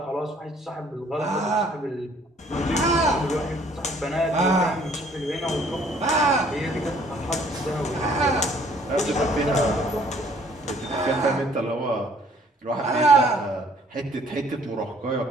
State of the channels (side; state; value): both; normal; correlation 0.59